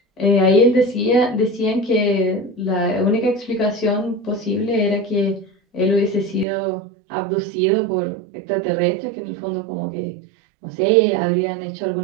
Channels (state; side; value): drops out; left; at 6.5 s